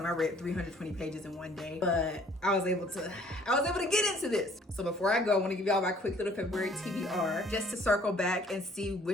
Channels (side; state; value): both; normal; correlation 0.57